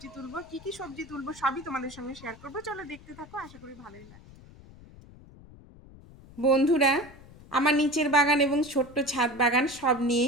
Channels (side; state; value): left; noise; rumble, 21 dB below the sound